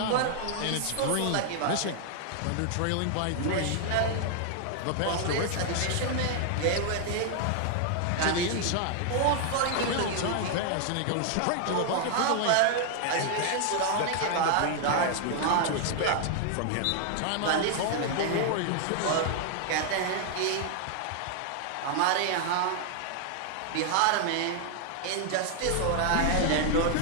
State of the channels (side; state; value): both; different; correlation 0.00